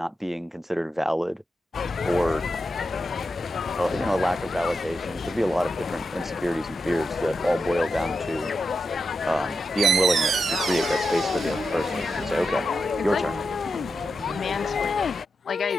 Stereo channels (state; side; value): normal; both; correlation 0.88